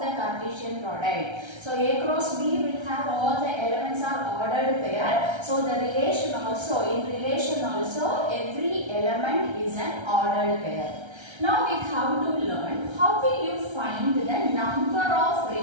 the Cartesian product. So A cross B will have all the elements are ordered pair. So the relation also, in relation also, every element is an ordered pair. Now we have to learn how will you find the number of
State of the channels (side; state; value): left; late; 1.3 ms